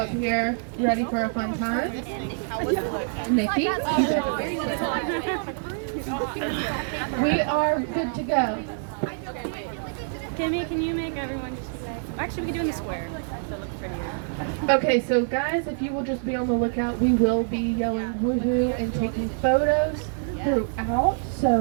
here ready for a fun time. Nikki, we are good to go. Kimmy, can you make everyone just like... Actually, we can do it in the square. So it looks prettier. Okay, so guys, if you will just be on the lookout, we will be yelling woohoo and taking photos throughout.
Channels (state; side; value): silent; left; digital silence